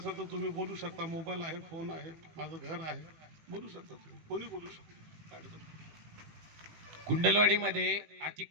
तर तुम्ही बोलू शकता. मोबाईल आहे, फोन आहे, माझं घर आहे, बोलू शकता तुम्ही. कोणी बोलू शकतो, काय अडचण नाही. कुंडलवाडीमध्ये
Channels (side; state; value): left; late; 18 ms